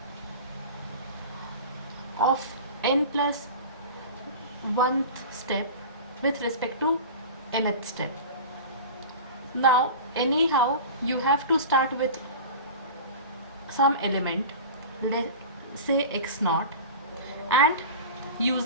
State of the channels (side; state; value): both; inverted; correlation -0.34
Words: of n plus 1th step with respect to nth step. Now, anyhow, you have to start with some element, let's say x naught, and